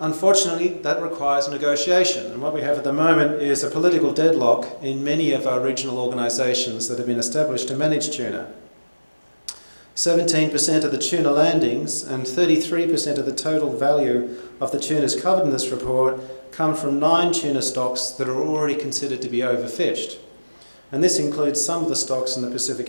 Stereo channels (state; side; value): inverted; both; correlation -1.00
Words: that requires negotiation, and what we have at the moment is a political deadlock in many of our regional organisations that have been established to manage tuna. 17% of the tuna landings and 33% of the total value of the tunas covered in this report come from 9 tuna stocks that are already considered to be overfished. And this includes some of the stocks in the